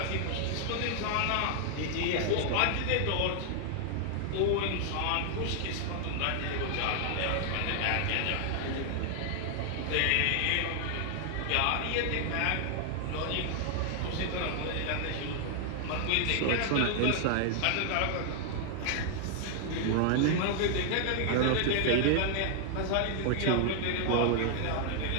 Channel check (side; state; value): both; different; correlation 0.00